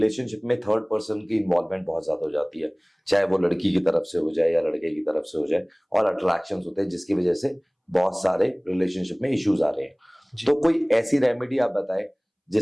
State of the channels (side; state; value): both; identical; correlation 1.00